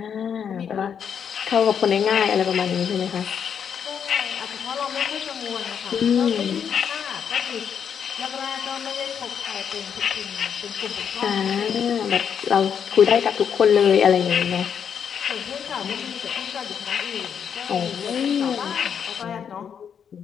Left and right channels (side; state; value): right; quieter; 7.7 dB